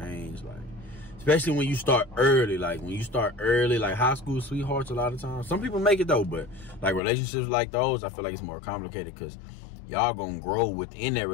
like especially when you start early. Like when you start early, like high school sweethearts, a lot of times some people make it though, but like relationships like those, I feel like it's more complicated because y'all gonna grow within that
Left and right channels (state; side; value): drops out; right; at 7.0 s